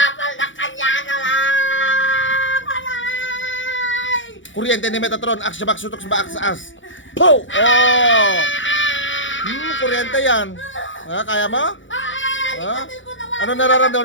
na kanya na lang! Alay! Kuryente ni Metatron. Aksya sutok sa baak sa as. Po! Oh! Kuryente yan. Ha? Kaya mo? Ha? Ikatin ko naman! Ano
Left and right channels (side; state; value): right; late; 0.56 ms